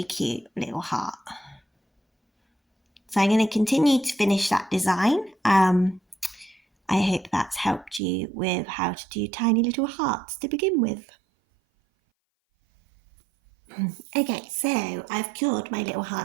cute little heart. So I'm going to continue to finish that design. I hope that's helped you with how to do tiny little hearts to begin with. Okay, so I've cured my little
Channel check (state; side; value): drops out; left; at 8.0 s